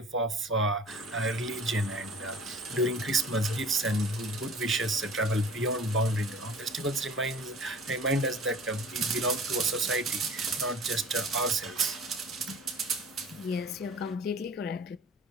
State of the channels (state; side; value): normal; both; correlation 0.44